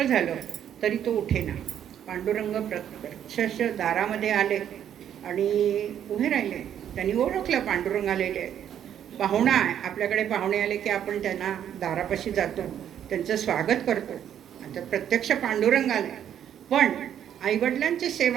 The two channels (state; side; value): quieter; left; 9.8 dB